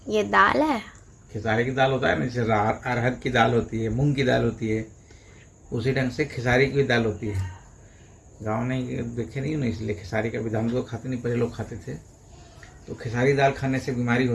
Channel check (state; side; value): identical; both; correlation 1.00